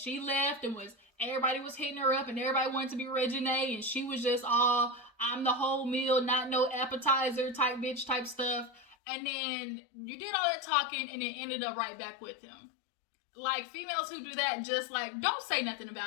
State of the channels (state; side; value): drops out; right; at 9.0 s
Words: left and everybody was hitting her up and everybody wanted to be Reginae, and she was just all, I'm the whole meal, not no appetizer type bitch type stuff. And then you did all that talking and then ended up right back with him. Like, females who do that, just like, don't say nothing